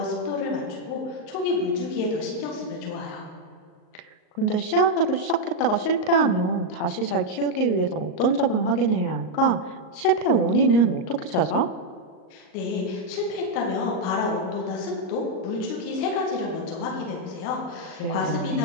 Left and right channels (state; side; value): late; right; 38 ms